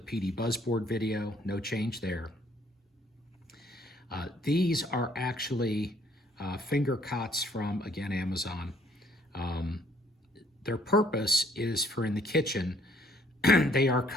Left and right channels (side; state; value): both; normal; correlation 0.63